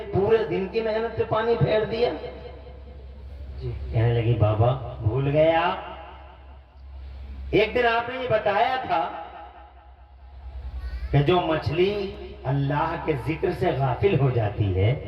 پورے دن کی محنت پہ پانی پھیر دیا۔ کہنے لگی بابا بھول گئے آپ، ایک دن آپ نے یہ بتایا تھا کہ جو مچھلی اللہ کے ذکر سے غافل ہو جاتی ہے،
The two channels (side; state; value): both; identical; correlation 1.00